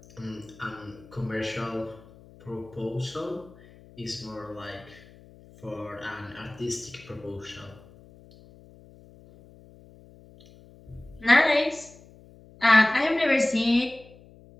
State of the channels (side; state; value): left; noise; hum, 23 dB below the sound